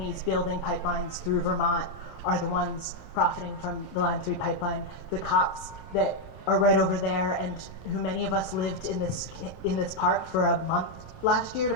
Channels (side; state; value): both; normal; correlation 0.01